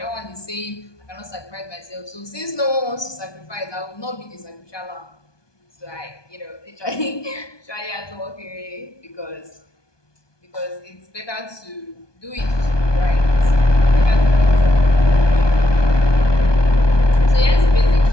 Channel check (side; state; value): right; late; 1.2 ms